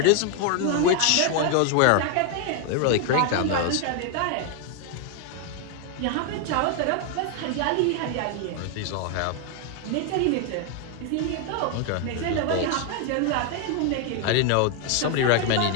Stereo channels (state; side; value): different; both; correlation 0.01